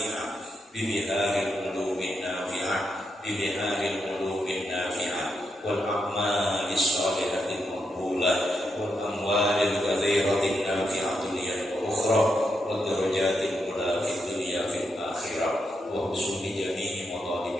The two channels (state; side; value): normal; both; correlation 0.83